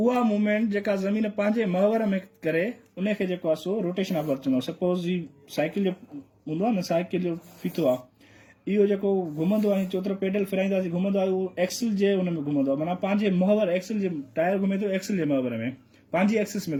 मूवमेंट जेका ज़मीन पंहिंजे महवर में करे उनखे जेको आहे सो रोटेशन ऑफ अर्थ चवंदो। सपोज जी साइकिल जो हूंदो आहे न, साइकिल जो फीथो आहे, इहो जेको घुमंदो आहे चोतरो पेडल फिराईंदासीं घुमंदो आहे उहो एक्सल जे हुन में घुमंदो आहे माना पंहिंजे मुहवर एक्सल जे टायर घुमे थो एक्सल जे मुहवर में पंहिंजी एक्सिस में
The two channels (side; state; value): both; identical; correlation 1.00